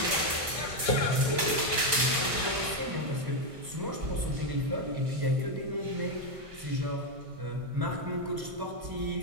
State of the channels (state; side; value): late; left; 1.6 ms